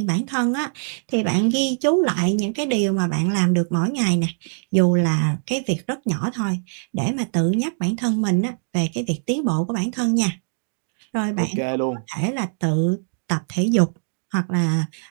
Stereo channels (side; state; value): left; silent; digital silence